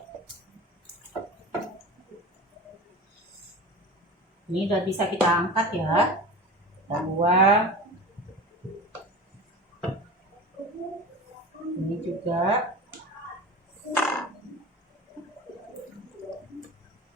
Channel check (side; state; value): both; normal; correlation 0.33